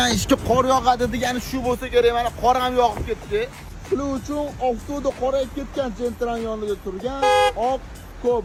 ishga qor yog'adi degani shu bo'lsa kerak, mana qor ham yog'ib ketdi. Shuning uchun avtoda qorayib ketgan Gentra'n yonida turgan oq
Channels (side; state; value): both; identical; correlation 1.00